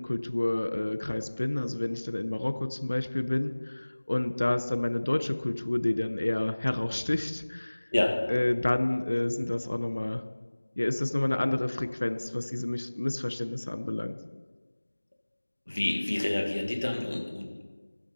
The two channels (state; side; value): inverted; both; correlation -1.00